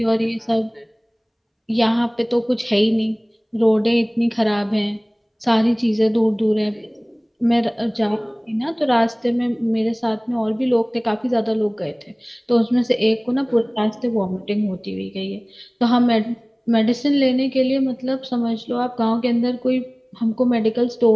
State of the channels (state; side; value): identical; both; correlation 1.00